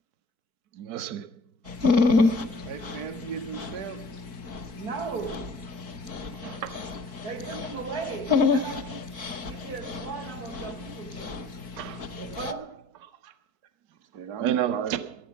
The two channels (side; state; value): left; late; 4.6 ms